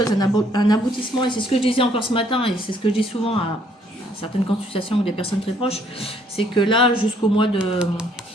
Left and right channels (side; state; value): both; normal; correlation 0.65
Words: un aboutissement. Et c'est ce que je disais encore ce matin. Et c'est ce que je dis souvent à certaines consultations ou des personnes très proches. C'est que là, jusqu'au mois de...